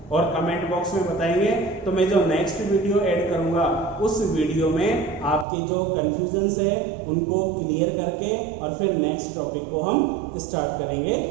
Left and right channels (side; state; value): left; drops out; at 5.5 s